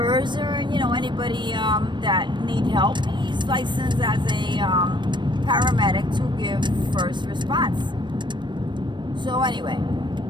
or, anybody that need help. He's licensed as a paramedic to give first response. So anyway,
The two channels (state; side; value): late; left; 0.22 ms